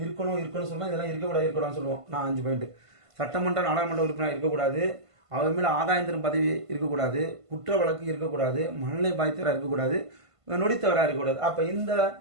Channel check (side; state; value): left; late; 1.5 ms